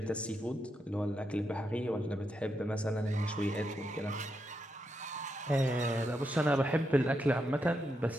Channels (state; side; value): normal; both; correlation 0.83